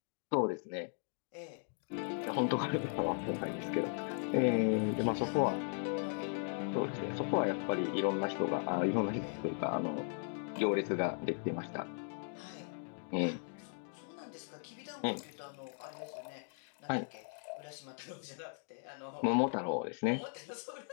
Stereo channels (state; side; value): silent; right; 53 dB below the other